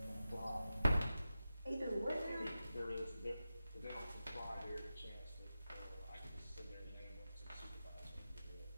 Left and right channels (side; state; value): both; inverted; correlation -0.92